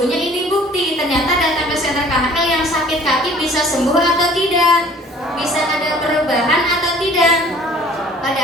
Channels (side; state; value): both; normal; correlation 0.52